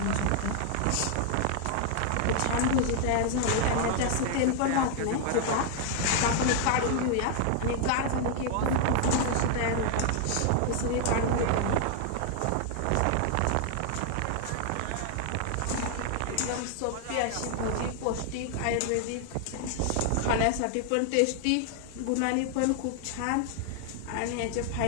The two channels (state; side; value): different; both; correlation 0.00